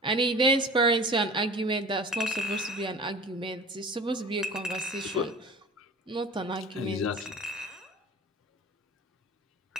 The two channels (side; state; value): both; normal; correlation 0.40